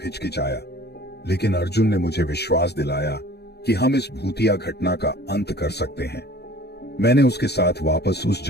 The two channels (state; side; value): late; right; 0.48 ms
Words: हिचकिचाया, लेकिन अर्जुन ने मुझे विश्वास दिलाया कि हम इस भूतिया घटना का अंत कर सकते हैं। मैंने उसके साथ वापस उस